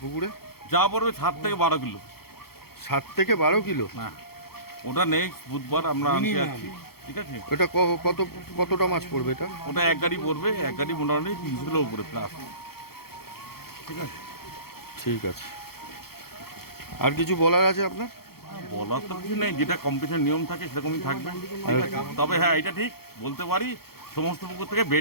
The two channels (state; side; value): late; right; 0.95 ms